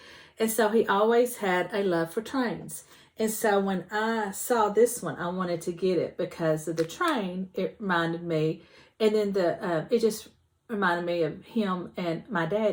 And so he always had a love for trains. And so when I saw this one, I wanted to get it because of the train. It reminded me, and then it just reminded me of him and my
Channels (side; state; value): both; identical; correlation 1.00